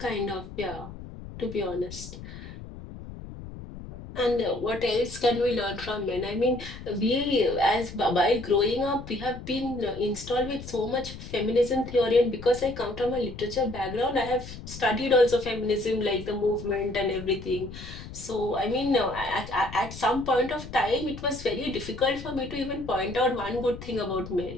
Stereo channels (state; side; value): noise; left; rumble, 12 dB below the sound